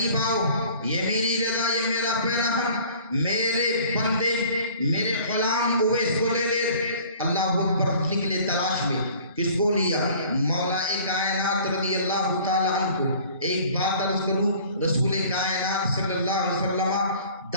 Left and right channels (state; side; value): inverted; both; correlation -0.50